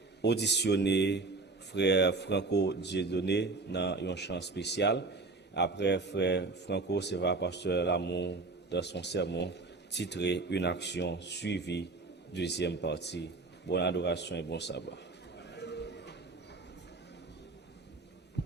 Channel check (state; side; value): quieter; left; 3.6 dB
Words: auditionner frère Franco Dieudonné dans un chant spécial. Après, frère Franco, c'est va pasteur Lamour dans son sermon titré Une action suivie, deuxième partie. Bonne adoration et bon sabbat.